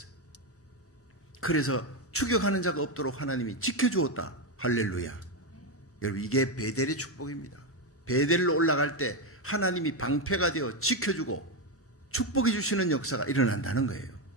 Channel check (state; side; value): normal; both; correlation 0.08